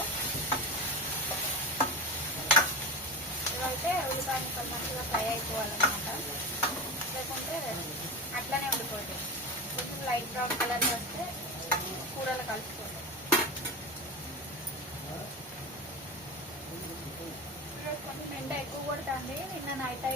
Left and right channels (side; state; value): both; normal; correlation 0.25